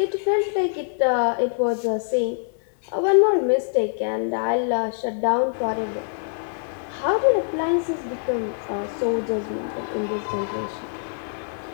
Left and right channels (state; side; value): silent; right; digital silence